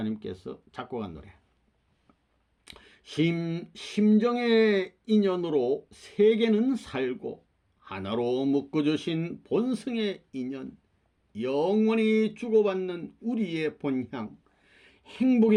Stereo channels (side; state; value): both; identical; correlation 1.00